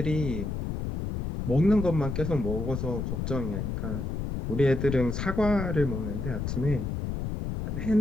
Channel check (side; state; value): left; noise; rumble, 3 dB below the sound